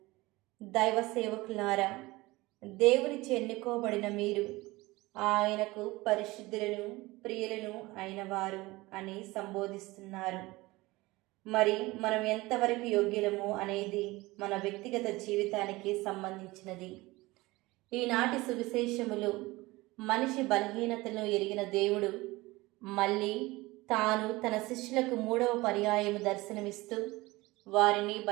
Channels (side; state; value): left; quieter; 20.9 dB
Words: దైవ సేవకులారా, దేవునిచే ఎన్నుకోబడిన మీరు ఆయనకు పరిశుద్ధులను, ప్రియులను అయినవారు అని సంబోధిస్తున్నారు. మరి మనం ఎంతవరకు యోగ్యులము అనేది మన వ్యక్తిగత జీవితానికి సంబంధించినది. ఈనాటి సువిశేషములు మనిషి బలహీనతను ఎరిగిన దేవుడు మళ్ళీ తాను తన శిష్యులకు 3వ పర్యాయము దర్శనమిస్తూ వారిని